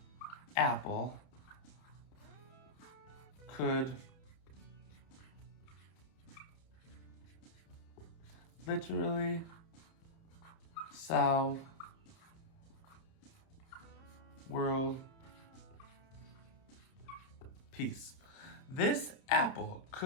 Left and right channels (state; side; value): late; right; 30 ms